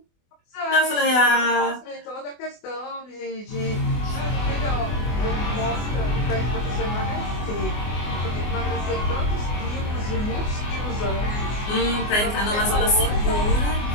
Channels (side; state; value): right; late; 24 ms